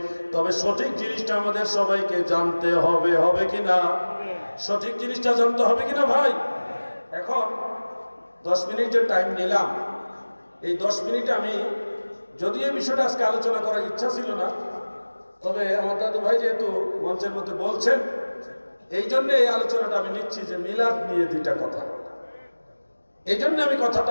তবে সঠিক জিনিসটা আমাদের সবাইকে জানতে হবে, হবে কিনা? সঠিক জিনিসটা জানতে হবে কিনা ভাই? এখন 10 মিনিট যে টাইম নিলাম, এই 10 মিনিটে আমি, যদি এই বিষয়টা আজকে আলোচনা করার ইচ্ছা ছিল না, তবে আমার দাদু ভাই যেহেতু মঞ্চের মধ্যে বলছেন, এই জন্য এই আলোচনাটা আমি নিচ্ছি যে মিলাদ নিয়ে 2টা কথা। এই জন্য আমি কথাটা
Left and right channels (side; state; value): both; inverted; correlation -1.00